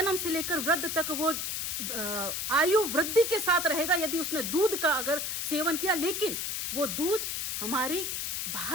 से लेकर वृद्ध तक वो आयु वृद्धि के साथ रहेगा यदि उसने दूध का अगर सेवन किया। लेकिन वो दूध हमारी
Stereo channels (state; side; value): noise; left; hiss, 2 dB below the sound